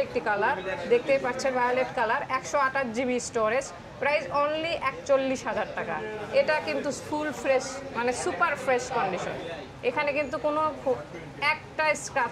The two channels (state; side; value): identical; both; correlation 1.00